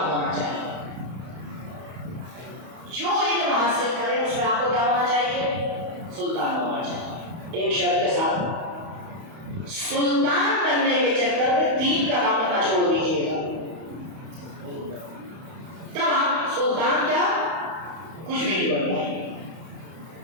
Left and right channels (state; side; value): late; left; 31 ms